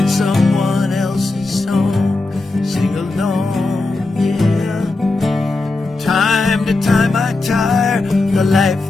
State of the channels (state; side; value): quieter; right; 3.2 dB